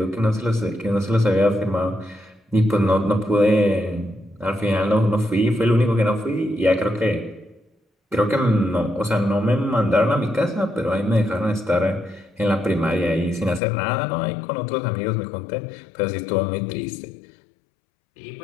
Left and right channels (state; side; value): drops out; right; at 13.6 s